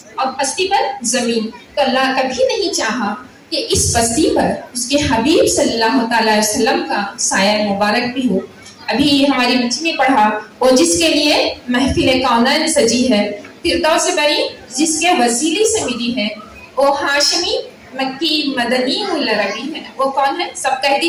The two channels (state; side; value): identical; both; correlation 1.00